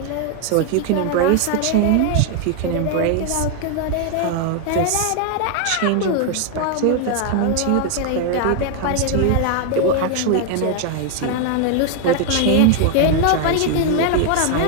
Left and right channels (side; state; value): both; different; correlation 0.00